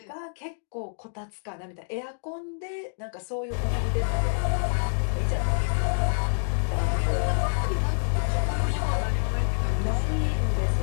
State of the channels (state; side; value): silent; right; digital silence